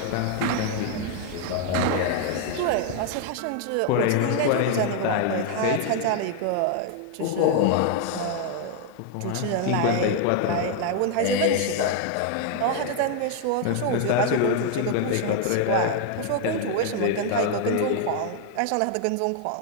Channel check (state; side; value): different; both; correlation 0.00